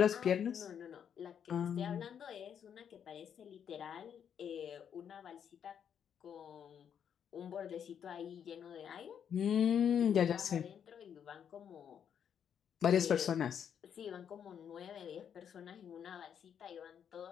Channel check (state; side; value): quieter; right; 8.3 dB